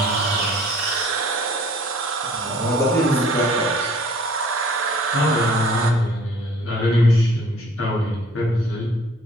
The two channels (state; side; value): normal; both; correlation 0.54